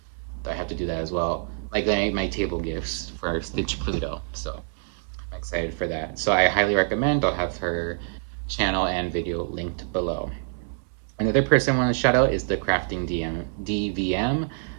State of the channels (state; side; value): silent; left; 57 dB below the other